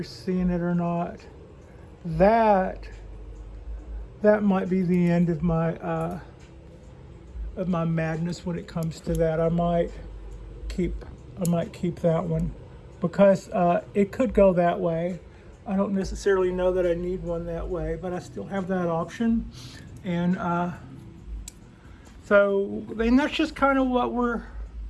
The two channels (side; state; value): both; identical; correlation 1.00